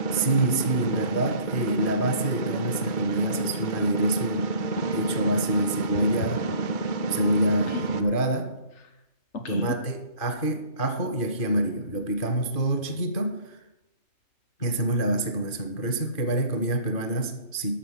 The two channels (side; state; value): right; late; 2.5 ms